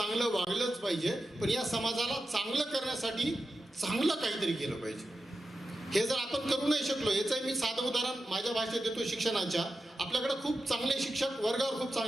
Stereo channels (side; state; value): both; normal; correlation 0.91